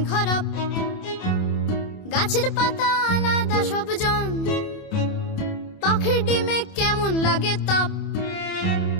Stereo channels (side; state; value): right; late; 27 ms